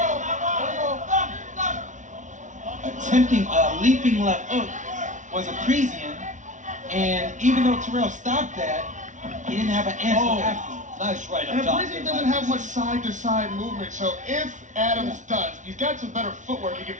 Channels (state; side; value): late; left; 0.36 ms